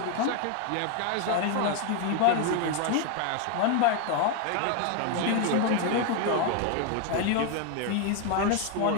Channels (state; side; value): different; both; correlation 0.01